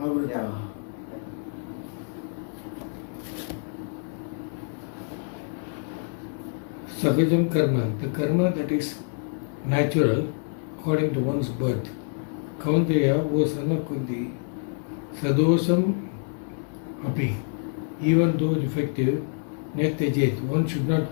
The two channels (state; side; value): silent; right; 60 dB below the other